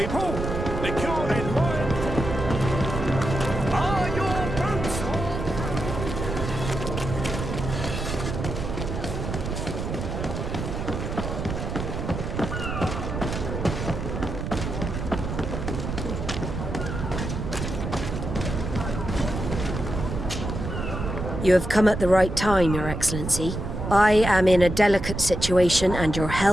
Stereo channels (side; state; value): right; noise; rumble, 4 dB below the sound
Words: Lick your head wide. Are your boots You have come at the right time, Your Excellency. I am in a delicate situation and your